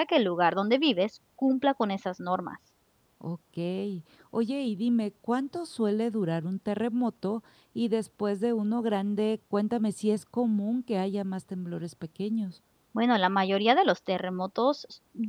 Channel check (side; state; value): both; identical; correlation 1.00